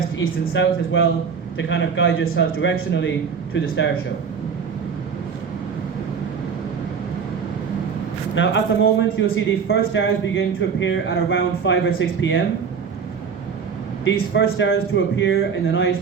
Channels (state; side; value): quieter; left; 6.3 dB